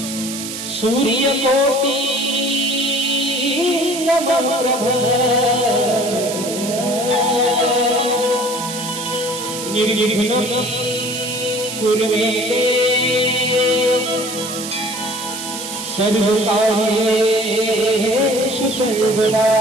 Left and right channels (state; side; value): noise; right; hiss, 8 dB below the sound